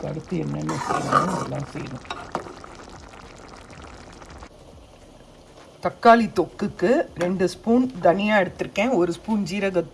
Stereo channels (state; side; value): identical; both; correlation 1.00